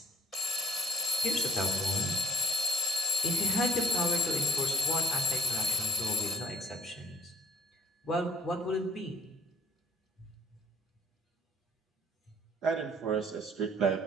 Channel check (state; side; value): normal; both; correlation 0.50